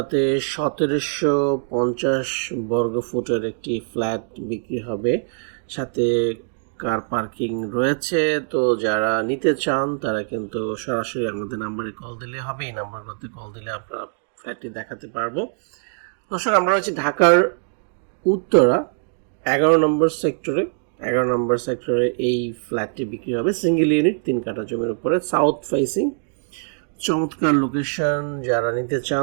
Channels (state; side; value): silent; left; digital silence